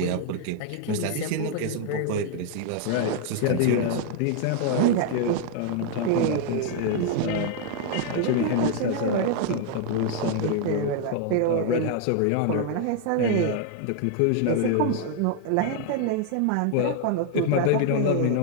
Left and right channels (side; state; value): both; different; correlation 0.00